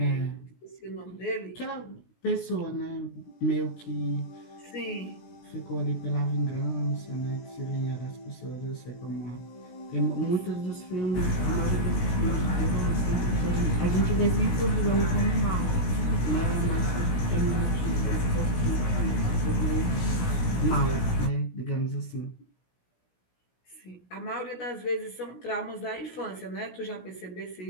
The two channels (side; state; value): right; late; 17 ms